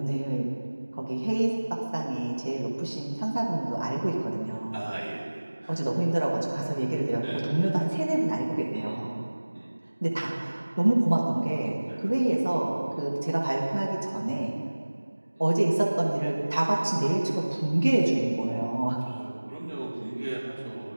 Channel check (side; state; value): both; inverted; correlation -1.00